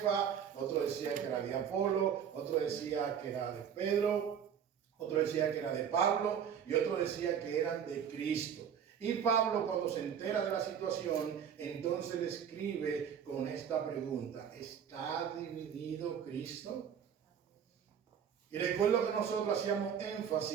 otro decía que era de Apolo, otro decía que era de Pedro, otro decía que era de Pablo y otro decía que eran de Cristo. Y Pablo, cuando se entera de la situación, entonces le escribe con esta pregunta: ¿está dividido Cristo? Y recuerdo que nosotros hacíamos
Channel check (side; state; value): left; quieter; 8.2 dB